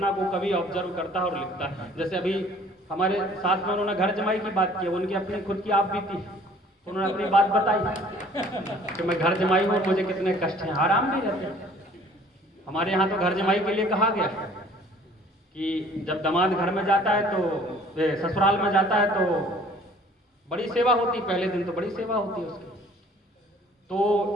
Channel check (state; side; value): normal; both; correlation 0.53